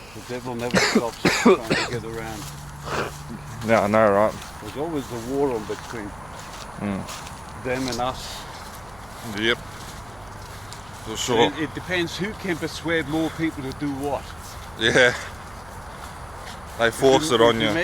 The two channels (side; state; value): right; noise; hum, 23 dB below the sound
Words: The devil never stops trying to get around. Yeah, I know, right? There's always a war on between them and us. Yep. For sure. It depends who can persuade more people to do what. Yeah. They force it on you.